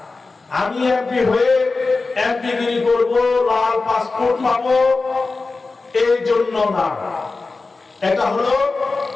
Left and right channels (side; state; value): right; quieter; 3.8 dB